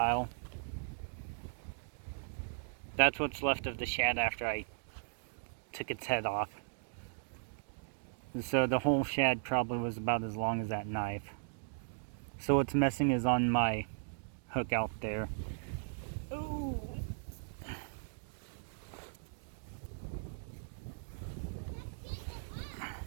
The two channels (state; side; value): silent; left; digital silence